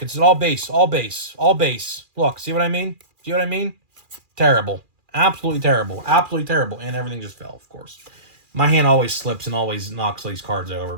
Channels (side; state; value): left; late; 2.4 ms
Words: it's all base, all base, all base. Look, see what I mean? See what I mean? Terrible. Absolutely terrible. Absolutely terrible. And everything just fell, of course. My hand always slips and always knocks these cards over,